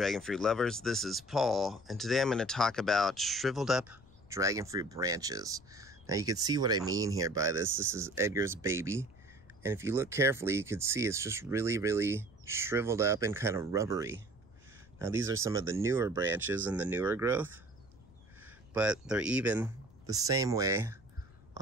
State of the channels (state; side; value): noise; left; rumble, 25 dB below the sound